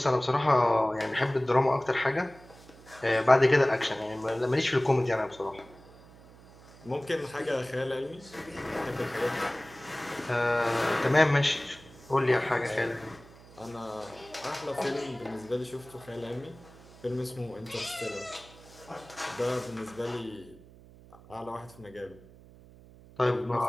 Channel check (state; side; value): noise; right; hum, 22 dB below the sound